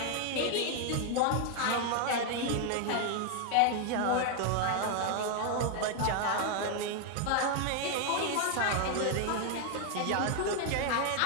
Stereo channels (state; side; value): different; both; correlation 0.01